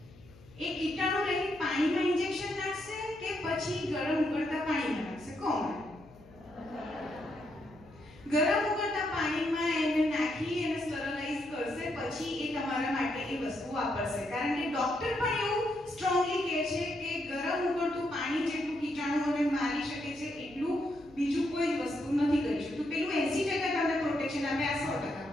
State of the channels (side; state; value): left; noise; hum, 23 dB below the sound